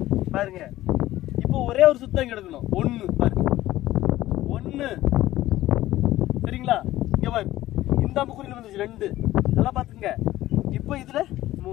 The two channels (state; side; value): quieter; right; 15.4 dB